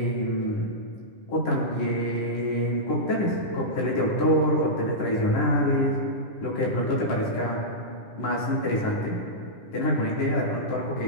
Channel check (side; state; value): right; late; 10 ms